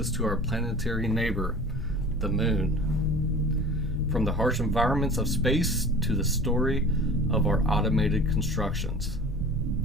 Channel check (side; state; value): both; normal; correlation 0.40